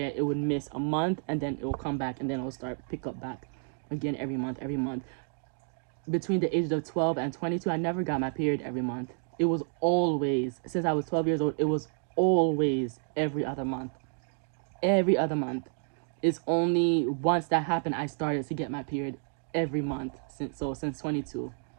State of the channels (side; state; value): left; silent; 58 dB below the other